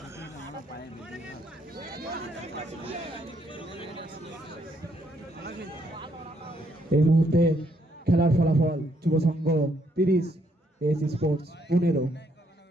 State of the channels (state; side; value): normal; both; correlation 0.72